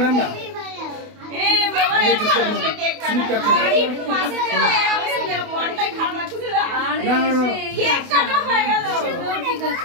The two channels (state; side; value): late; left; 28 ms